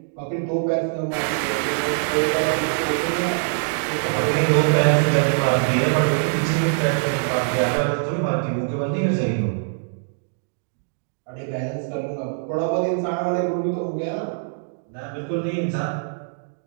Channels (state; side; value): silent; left; digital silence